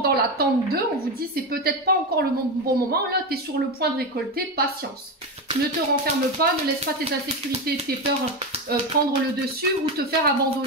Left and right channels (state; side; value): normal; both; correlation 0.16